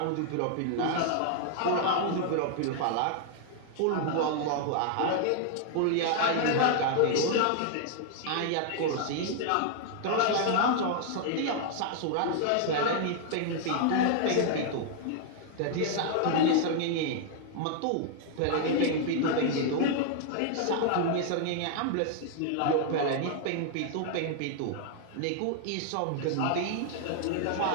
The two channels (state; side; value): different; both; correlation 0.00